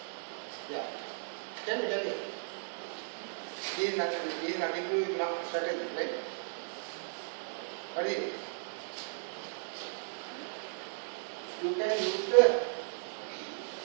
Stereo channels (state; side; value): silent; left; digital silence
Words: Yeah. Tell me. This is nothing to do with mark strategy, right? What is it? You can use the